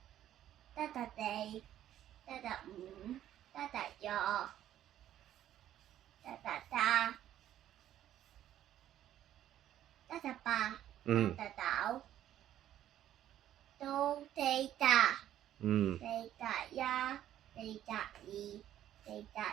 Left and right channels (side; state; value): left; quieter; 11.8 dB